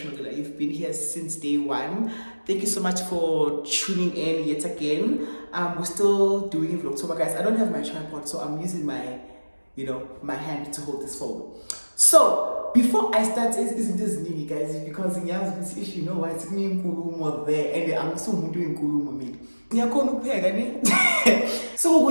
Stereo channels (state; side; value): inverted; both; correlation -1.00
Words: you've been here since day one, thank you so much for tuning in yet again. We're still doing it for October, guys. I don't have my tripod, so I'm using my my hand to hold this phone. So before I start, isn't this new, guys? Because in Yaz, if you know why it's me in Kulumo there, and I'm so doing Kulumo me. So